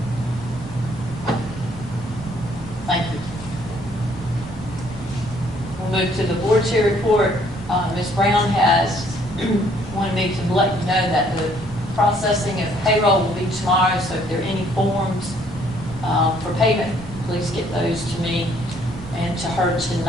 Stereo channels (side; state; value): right; noise; rumble, 17 dB below the sound